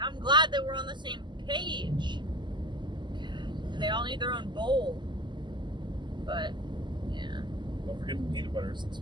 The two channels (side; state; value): left; late; 0.22 ms